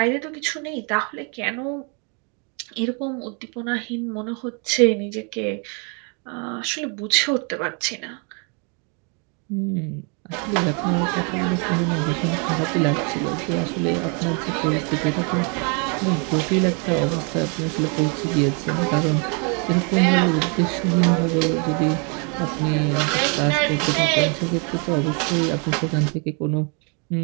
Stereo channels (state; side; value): quieter; left; 36.1 dB